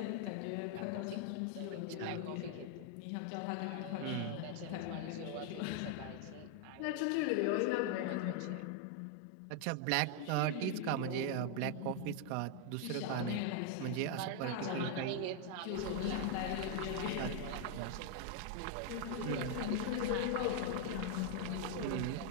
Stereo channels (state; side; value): different; both; correlation 0.00